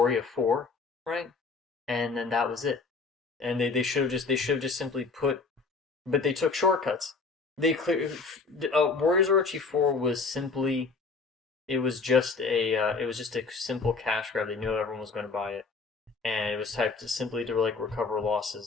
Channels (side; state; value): right; quieter; 4.4 dB